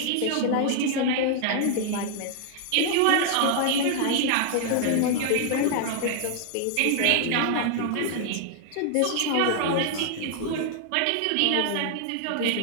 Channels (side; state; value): both; different; correlation -0.01